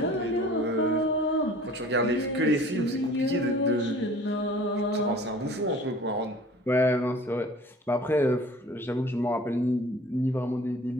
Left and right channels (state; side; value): normal; both; correlation 0.47